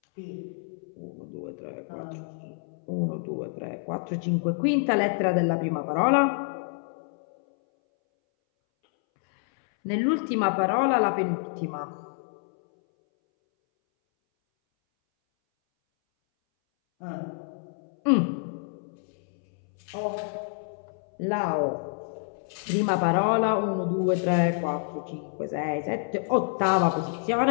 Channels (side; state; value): right; silent; 60 dB below the other